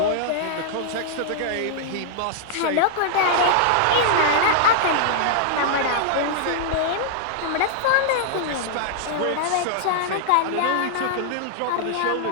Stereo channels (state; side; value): different; both; correlation -0.01